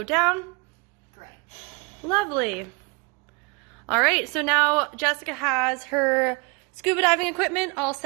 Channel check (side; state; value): left; quieter; 29.7 dB